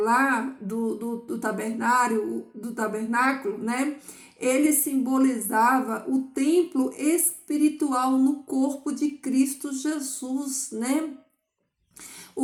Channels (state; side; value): identical; both; correlation 1.00